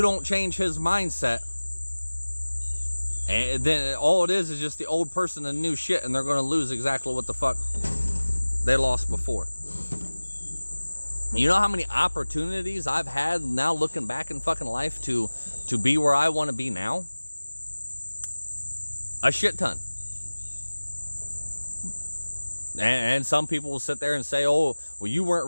don't change his mindset, and then all it is just the old person and new shit, and they're going to lose exactly what the fuck they lost before. You know how many opportunities I've had now looking back in fucking life to be where I want to be now? A shit ton. And some people will sit there and say, oh, well, you weren't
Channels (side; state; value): both; inverted; correlation -1.00